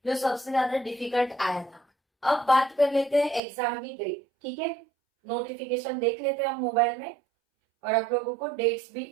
जो सबसे ज्यादा डिफिकल्ट आया था। अब बात कर लेते हैं एग्जाम की डेट। ठीक है, नोटिफिकेशन देख लेते हैं हम मोबाइल में और आप लोगों को डेट्स भी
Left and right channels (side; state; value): left; drops out; at 3.4 s